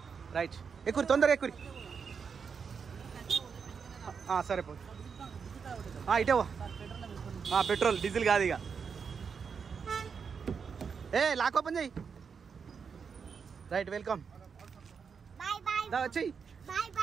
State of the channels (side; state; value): left; quieter; 6.1 dB